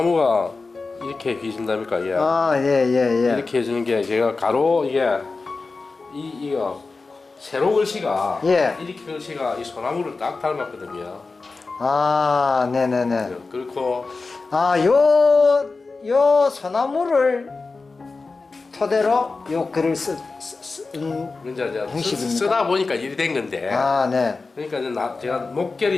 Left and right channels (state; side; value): quieter; right; 3.9 dB